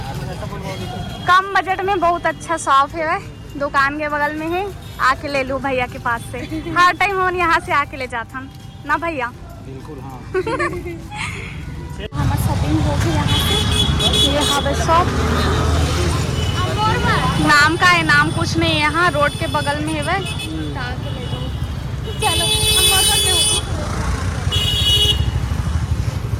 कम बजट में बहुत अच्छा शॉप है दुकान के बगल में है आके ले लो भैया के पास से हर टाइम हम यहाँ से आके ले जाता हम ना भैया बिल्कुल हाँ हमारा शॉपिंग हो गई यहाँ से ये हवे शॉप नाम का है नाम कुछ नहीं यहाँ रोड के बगल में है वह चलो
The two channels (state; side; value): identical; both; correlation 1.00